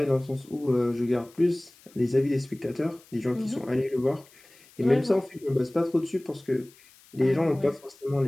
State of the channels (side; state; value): left; noise; hiss, 27 dB below the sound